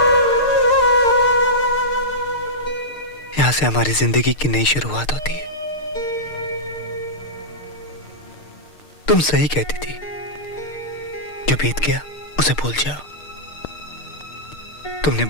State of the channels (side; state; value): right; late; 6.6 ms